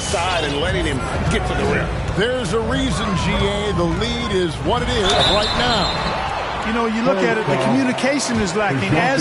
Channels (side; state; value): both; identical; correlation 1.00